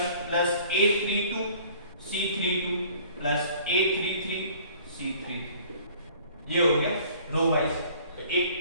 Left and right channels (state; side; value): inverted; both; correlation -0.52